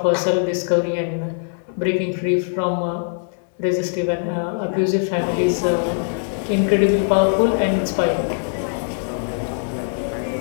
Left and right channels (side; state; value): right; silent; 65 dB below the other